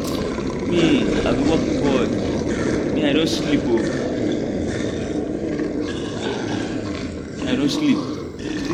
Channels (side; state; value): both; identical; correlation 1.00